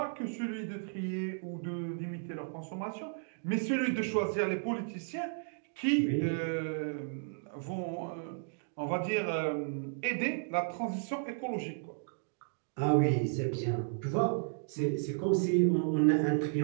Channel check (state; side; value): silent; left; digital silence